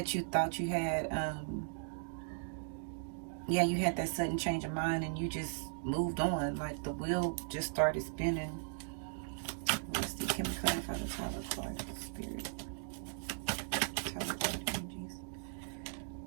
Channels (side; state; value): left; silent; digital silence